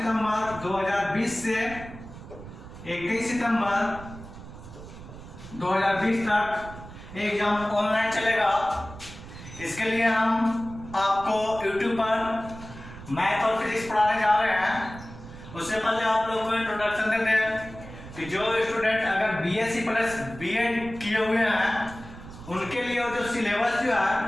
2020 से 21 सितंबर 2020 तक एग्जाम ऑनलाइन चलेगा। इसके लिए हम आपको यूट्यूब पर मैथ और फिजिक्स पढ़ाने जा रहे हैं। उससे पहले आप लोग को इंट्रोडक्शन देते हैं कि जो स्टूडेंट अगर बीएससी प्लस बीएड किए हुए हैं उनके लिए जो सिलेबस जो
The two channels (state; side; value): noise; right; rumble, 14 dB below the sound